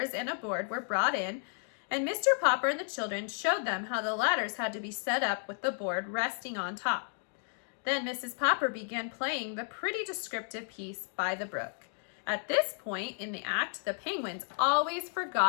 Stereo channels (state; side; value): silent; right; 56 dB below the other